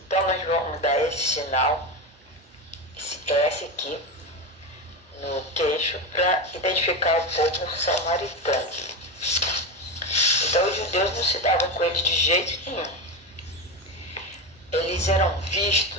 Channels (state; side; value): normal; both; correlation 0.17